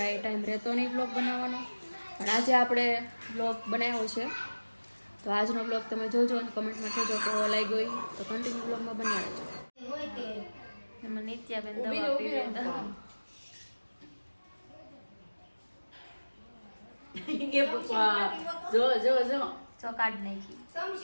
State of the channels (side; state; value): both; inverted; correlation -1.00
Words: ટાઈમ રહેતો નહીં બ્લોગ બનાવવાનો. પણ આજે આપણે બ્લોગ બનાવ્યો છે તો આજનો બ્લોગ તમે જોજો અને કમેન્ટમાં કહેજો કેવો લાગ્યો તો કન્ટિન્યુ બ્લોગમાં બની રહેજો. એમાં નિત્યાબેન દવા પીવે જો કાઢ નાખી